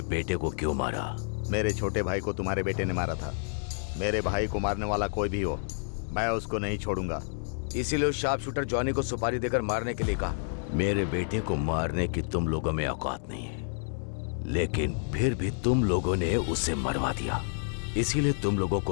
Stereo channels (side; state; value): right; silent; digital silence